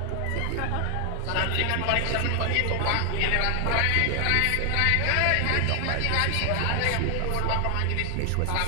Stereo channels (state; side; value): different; both; correlation 0.00